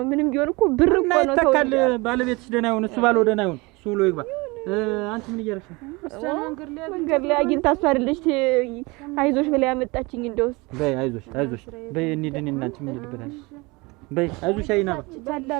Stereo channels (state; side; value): quieter; left; 25.0 dB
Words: ምንም ቢሆን እኮ ብር እኮ ነው። ተው ተካል ባለቤትሽ ደህና ይሁን፣ እሱ ባለው ደህና ይሁን፣ እሱ ብሎ ይግባ። አንቺ ምን እያደረግሽ ነው? መንገድ ላይ አግኝታ እሷ አይደለች አይዞሽ ብላ ያመጣችኝ። እንደውስ በይ አይዞሽ በይ እንሂድ እና አንቺ ምን ልበላሽ? በይ አይዞሽ አይና